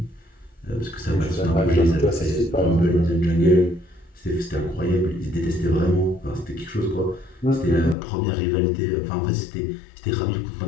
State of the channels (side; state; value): right; drops out; at 8.0 s